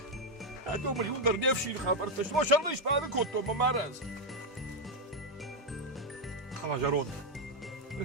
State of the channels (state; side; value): normal; both; correlation 0.02